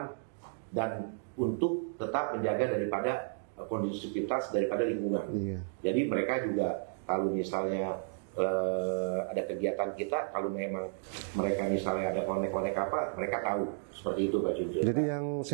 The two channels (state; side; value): silent; left; digital silence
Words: dan untuk tetap menjaga daripada kondusivitas daripada lingkungan. Jadi mereka juga kalau misalnya ada kegiatan kita, kalau memang mereka misalnya ada konek-konek apa, mereka tahu seperti itu Pak Junjun. Jadi yang